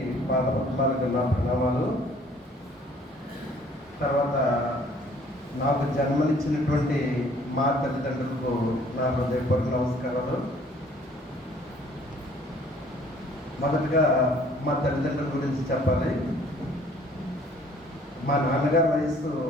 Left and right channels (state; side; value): normal; both; correlation 0.57